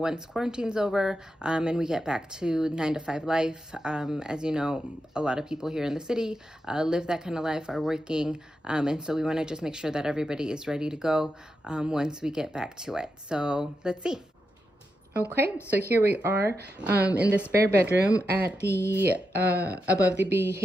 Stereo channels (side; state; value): both; normal; correlation 0.87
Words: quarantine's over and we get back to 9 to 5 life. As you know, a lot of people here in the city live that kind of life, are working, and so we want to just make sure that everybody is ready to go once we get back to it. So let's see. Okay, so here we are in the spare bedroom at the above the